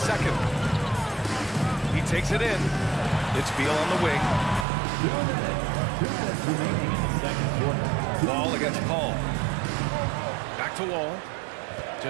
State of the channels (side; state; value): left; drops out; at 4.7 s